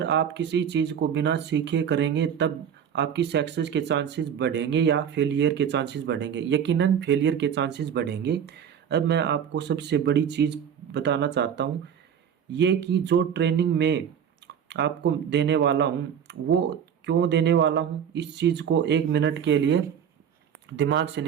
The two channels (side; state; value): left; quieter; 8.3 dB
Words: आप किसी चीज़ को बिना सीखे करेंगे तब आपकी सक्सेस के चांसेस बढ़ेंगे या फेलियर के चांसेस बढ़ेंगे? यकीनन फेलियर के चांसेस बढ़ेंगे। अब मैं आपको सबसे बड़ी चीज़ बताना चाहता हूँ, ये कि जो ट्रेनिंग में आपको देने वाला हूँ वो क्यों देने वाला हूँ, इस चीज़ को 1 मिनट के लिए दिमाग से